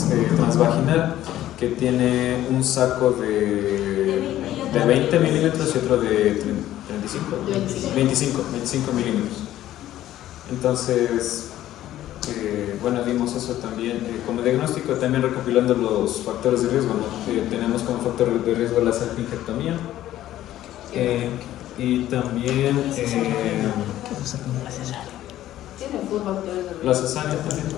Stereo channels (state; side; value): quieter; right; 13.4 dB